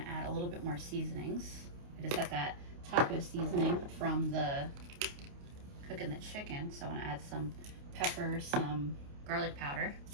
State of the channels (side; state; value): left; late; 28 ms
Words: add a little bit more seasonings. I just got that taco seasoning from the cooking the chicken, so I want to add some pepper, some garlic powder.